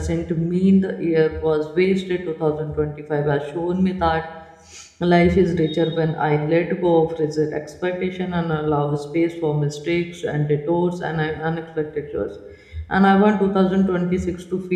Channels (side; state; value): both; identical; correlation 1.00